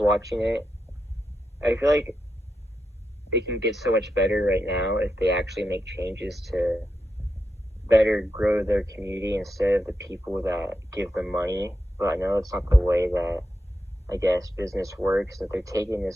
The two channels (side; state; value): both; normal; correlation 0.86